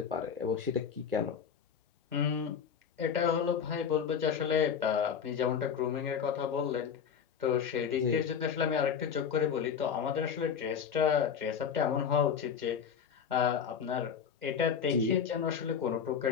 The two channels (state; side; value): quieter; right; 7.2 dB